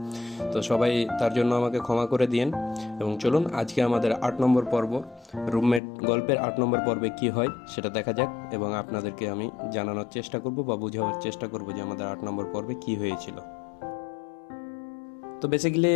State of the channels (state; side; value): drops out; right; at 5.8 s